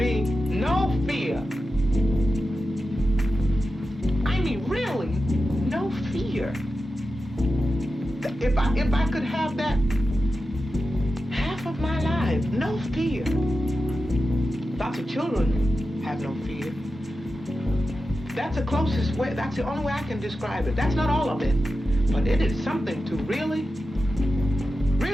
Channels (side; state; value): both; normal; correlation 0.92